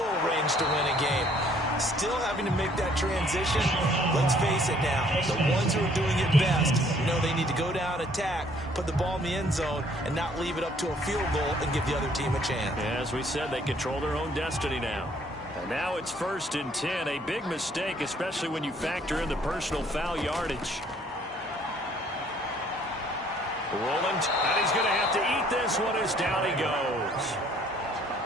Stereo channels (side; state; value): both; normal; correlation 0.61